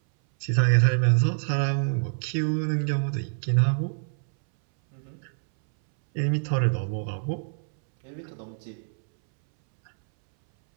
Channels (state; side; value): silent; left; 61 dB below the other